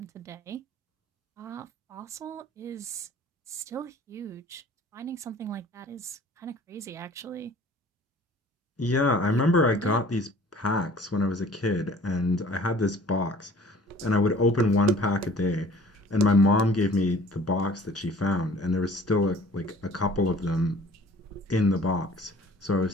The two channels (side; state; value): both; normal; correlation 0.50